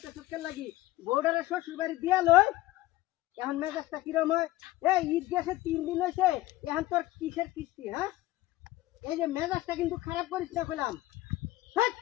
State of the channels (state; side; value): quieter; right; 17.0 dB